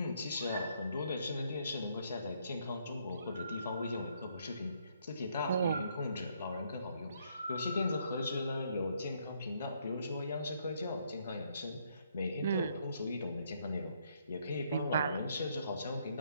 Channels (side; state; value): both; inverted; correlation -0.71